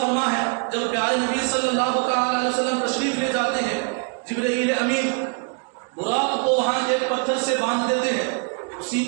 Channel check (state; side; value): quieter; left; 39.5 dB